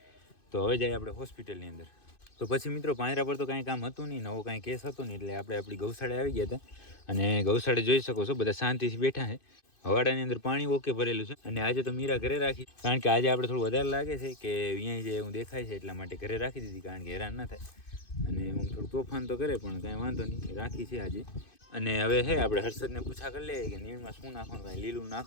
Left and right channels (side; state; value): right; late; 2.5 ms